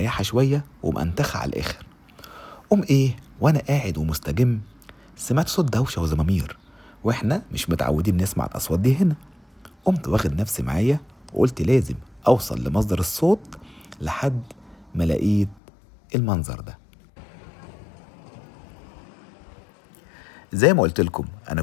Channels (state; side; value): drops out; right; at 15.6 s